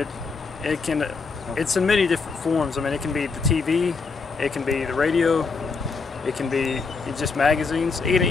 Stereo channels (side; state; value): right; quieter; 4.7 dB